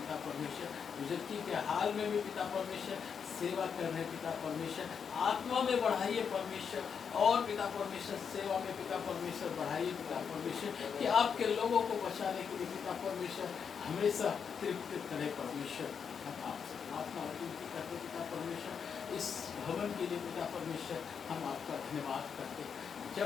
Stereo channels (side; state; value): right; quieter; 6.7 dB